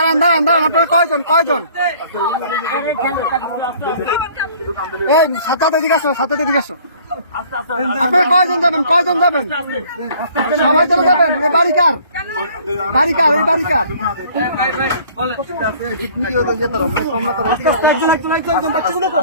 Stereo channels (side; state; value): both; inverted; correlation -0.54